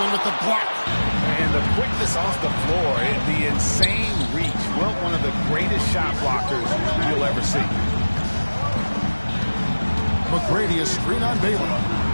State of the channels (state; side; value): inverted; both; correlation -1.00